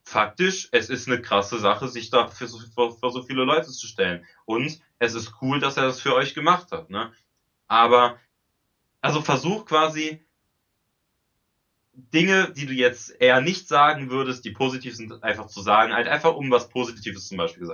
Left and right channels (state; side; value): identical; both; correlation 1.00